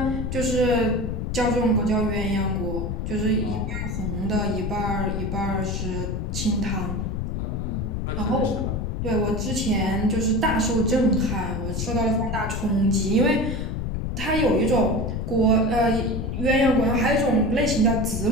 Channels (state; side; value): noise; left; rumble, 2 dB below the sound